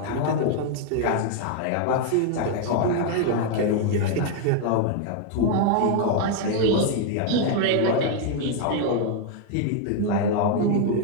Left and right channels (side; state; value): both; different; correlation 0.00